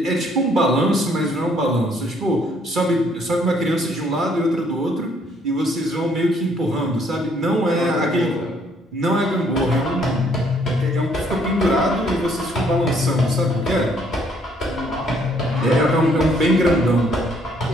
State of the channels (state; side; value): normal; both; correlation 0.65